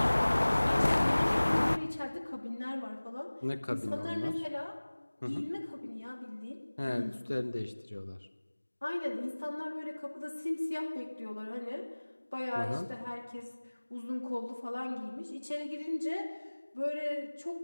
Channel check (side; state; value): both; inverted; correlation -1.00